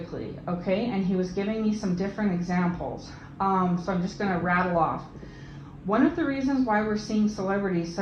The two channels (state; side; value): identical; both; correlation 1.00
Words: okay? And he was giving me some different examples. So I'm just going to rattle off. One of the reasons why we're seeing celebrities